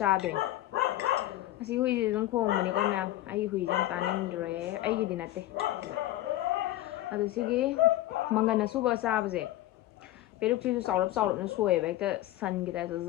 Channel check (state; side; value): quieter; right; 14.9 dB